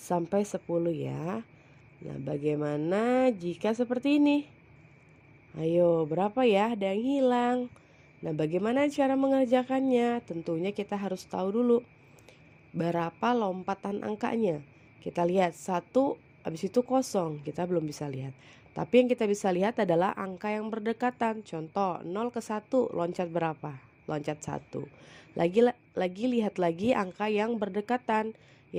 10 ya. Nah, bagaimana jika seperti ini? Ayo, berapa ya? Ada yang hilang. Nah, bagaimana cara mengerjakannya? Tentunya kita harus tahu dulu berapa lompatan angkanya. Kita lihat 1, habis itu kosong, kita belum bisa lihat. Tapi yang kita bisa lihat adalah angka yang berdekatan. Contoh 0 ke 1 loncat berapa? Loncat 1. Lagi lihat lagi angka yang berdekatan,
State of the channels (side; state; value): both; identical; correlation 1.00